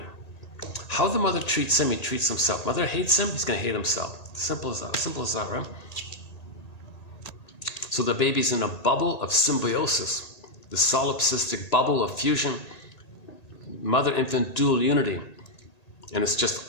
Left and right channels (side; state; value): right; late; 1.8 ms